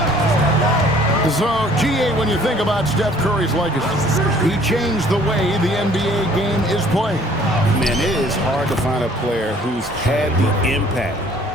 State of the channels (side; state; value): both; normal; correlation 0.56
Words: So, GA, when you think about Steph Curry's legacy, he changed the way the NBA game is played. Man, it is hard to find a player who's had the impact